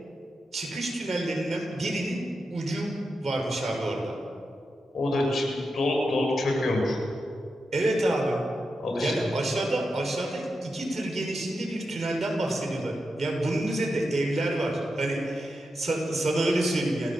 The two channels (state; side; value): normal; both; correlation 0.88